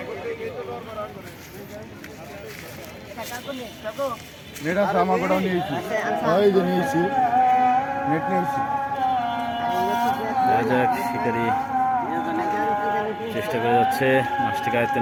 নেট আছে আমার কোটাও নিয়েছি ওই যে নিয়েছি নেট নিয়েছি শিকারি চেষ্টা করে যাচ্ছে মাছটিকে আয়ত্তে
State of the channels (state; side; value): identical; both; correlation 1.00